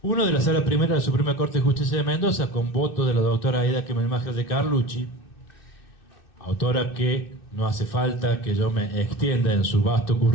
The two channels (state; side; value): late; right; 2.6 ms